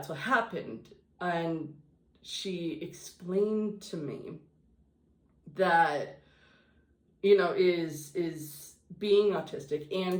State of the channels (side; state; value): both; identical; correlation 1.00